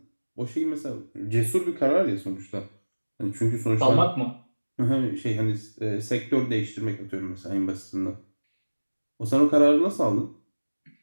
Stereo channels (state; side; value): inverted; both; correlation -1.00